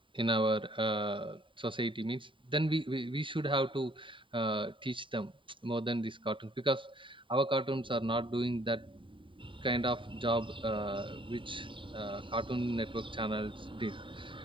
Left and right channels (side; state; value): left; late; 0.25 ms